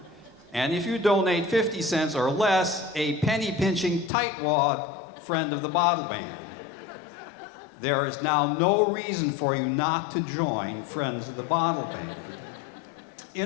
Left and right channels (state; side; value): drops out; right; at 4.1 s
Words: And if you donate 50 cents or less, a penny-pinching tightwad friend of the Bottle Band. There is now no reason for you not to join Friends of the Bottle Band.